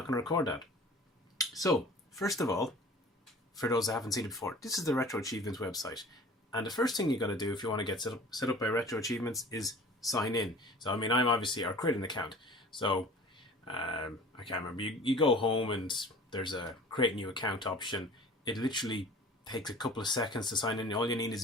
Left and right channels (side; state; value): both; normal; correlation 0.44